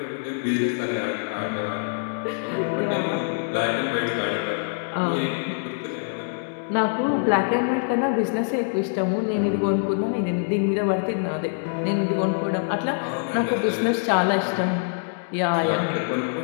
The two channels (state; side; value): silent; right; digital silence